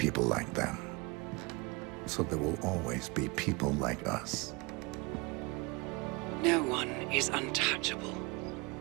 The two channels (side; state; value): left; quieter; 26.6 dB